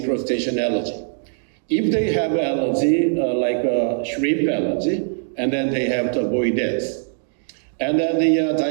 crustacean allergy. If they have allergy, like a shrimp allergy, and then they have to avoid this. And then the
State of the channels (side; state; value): left; silent; digital silence